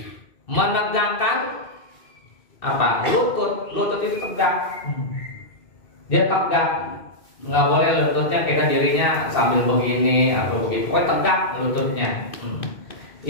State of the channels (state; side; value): late; right; 2.7 ms